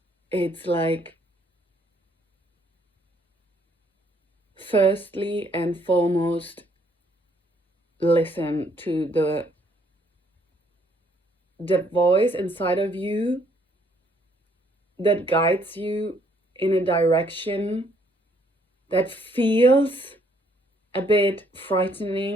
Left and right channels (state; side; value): normal; both; correlation 0.67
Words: It's like, firstly and foremost, listen to the voice inside of you that guides you in a direction that feels a bit